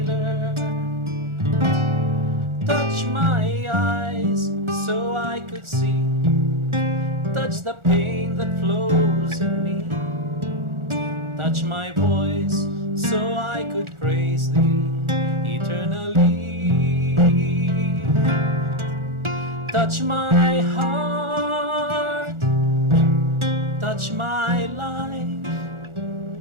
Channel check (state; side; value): late; left; 1.4 ms